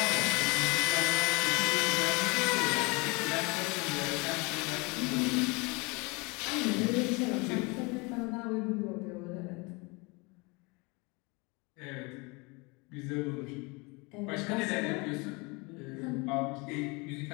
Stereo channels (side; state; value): right; quieter; 27.8 dB